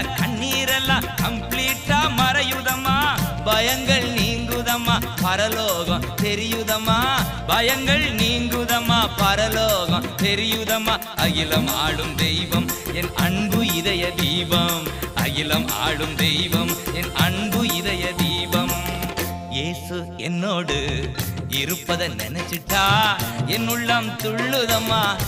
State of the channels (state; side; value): identical; both; correlation 1.00